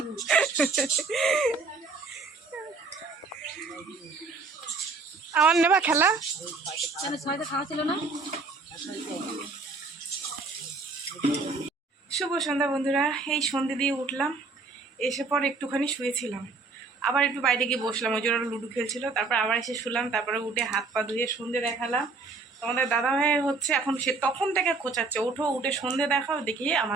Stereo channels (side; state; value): left; quieter; 4.0 dB